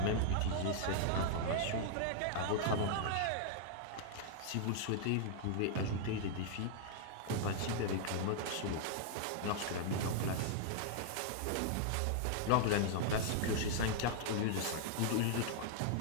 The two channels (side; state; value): both; different; correlation -0.01